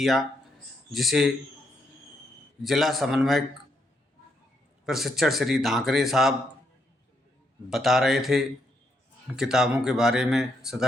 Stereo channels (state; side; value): normal; both; correlation 0.77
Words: जिसे जिला समन्वयक प्रशिक्षण श्री धाकरे साहब बता रहे थे किताबों के बारे में